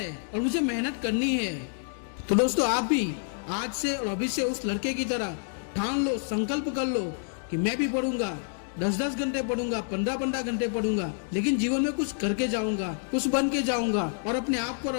और मुझे मेहनत करनी है। तो दोस्तों आप भी आज से और अभी से उस लड़के की तरह ठान लो, संकल्प कर लो कि मैं भी पढ़ूंगा, 10-10 घंटे पढ़ूंगा, 15-15 घंटे पढ़ूंगा, लेकिन जीवन में कुछ करके जाऊंगा, कुछ बन के जाऊंगा और अपने आप को और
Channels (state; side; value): silent; right; digital silence